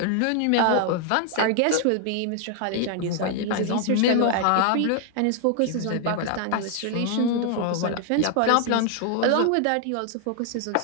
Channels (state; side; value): different; both; correlation 0.00